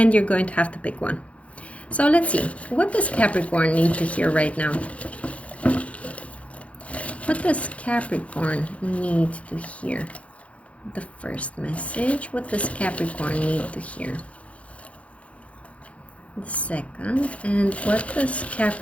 you're going to have to pick one. So let's see. What does Capricorn need to hear right now? What does Capricorn need to hear? The first message. What does Capricorn need to hear? The second. And what does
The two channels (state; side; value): late; right; 0.064 ms